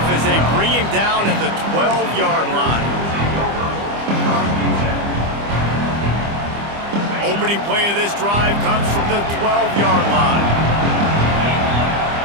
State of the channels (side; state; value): left; late; 25 ms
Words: as they bring him down at the 12-yard line. Opening play of this drive comes from the 12-yard line.